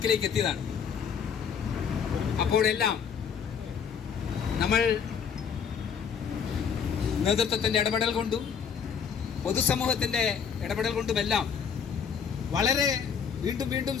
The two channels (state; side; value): quieter; right; 7.0 dB